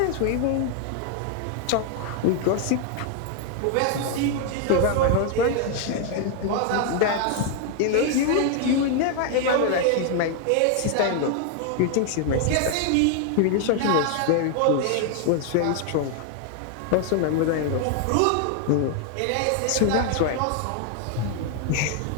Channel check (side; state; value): both; different; correlation 0.00